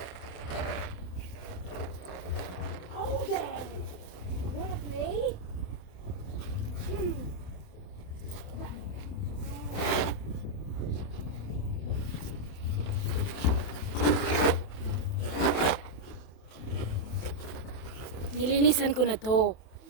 Oh there! Wanna play? Nilinisan ko na to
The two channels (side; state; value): right; late; 28 ms